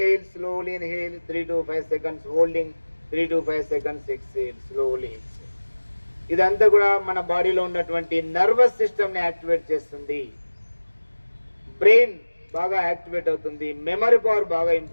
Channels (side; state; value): both; inverted; correlation -1.00